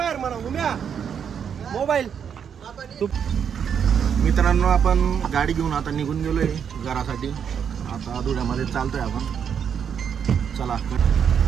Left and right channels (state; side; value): quieter; left; 7.7 dB